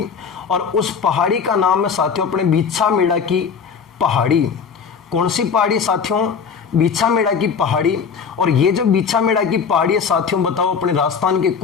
और उस पहाड़ी का नाम है साथियों अपने बीछा मेड़ा की पहाड़ी। कौन सी पहाड़ी साथियों? बीछा मेड़ा की पहाड़ी। और ये जो बीछा मेड़ा की पहाड़ी है साथियों, बताओ अपने राजस्थान के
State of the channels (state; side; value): quieter; right; 6.1 dB